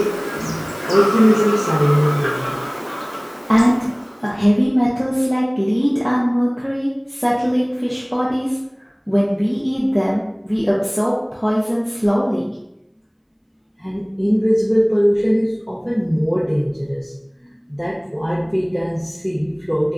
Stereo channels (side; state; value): both; identical; correlation 1.00